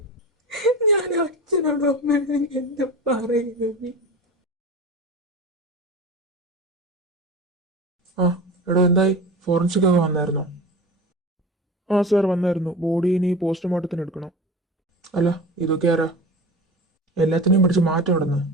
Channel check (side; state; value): both; normal; correlation 0.31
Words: ഞാൻ അച്ഛനോടോ എന്താ പറയുന്നത്? എടോ, എന്തായി? ഫോറൻസിക് ഒക്കെ വന്നായിരുന്നോ? സാർ വന്നായിരുന്നു. ബോഡി ഇനി പോസ്റ്റ്മോർട്ടത്തിന് എടുക്കണം. അല്ല, ഇതൊക്കെ ആരാ? എല്ലാത്തിനെയും പിടിച്ച് മാറ്റം ഇടുന്നു.